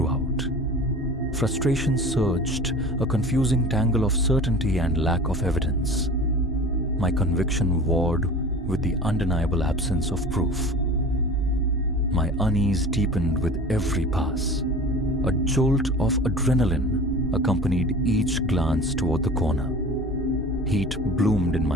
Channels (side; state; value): both; normal; correlation 0.38